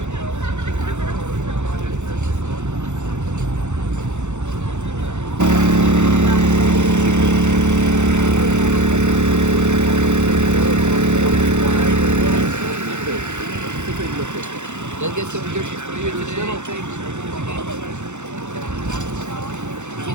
Let's get some dishes for you today. Little things. It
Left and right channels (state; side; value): late; left; 0.83 ms